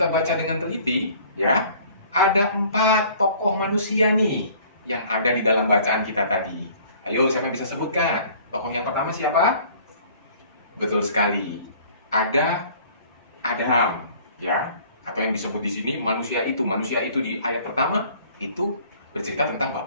baca dengan teliti, ya, ada 4 tokoh manusia nih yang ada di dalam bacaan kita tadi. Ayo, siapa yang bisa sebutkan? Tokoh yang pertama siapa? Betul sekali. Ada Adam, ya, atau yang disebut di sini manusia itu. Manusia itu di ayat pertama itu bercerita tentang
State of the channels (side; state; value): both; inverted; correlation -0.52